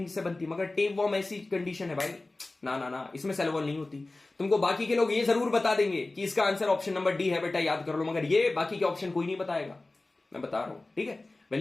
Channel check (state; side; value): quieter; right; 3.1 dB